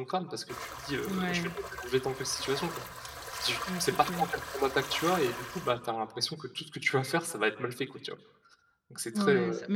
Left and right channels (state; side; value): identical; both; correlation 1.00